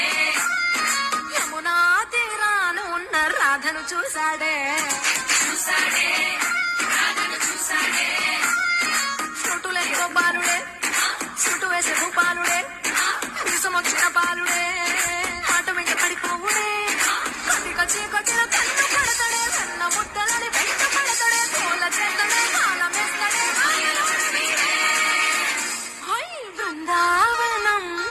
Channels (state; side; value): identical; both; correlation 1.00